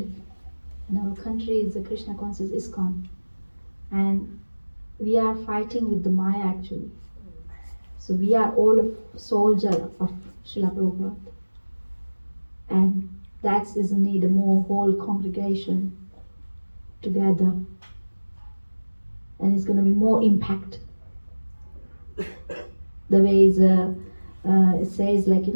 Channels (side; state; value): both; inverted; correlation -1.00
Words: In our country is the Krishna Consciousness Iskcon. And we are fighting with the Maya actually. So we are all a soldier of Srila Prabhupada. And that is a need a more whole congregation together. And it's going to be more impact. The way it says